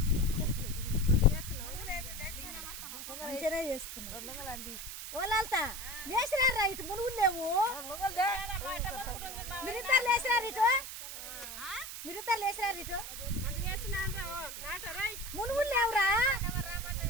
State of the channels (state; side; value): noise; right; hiss, 8 dB below the sound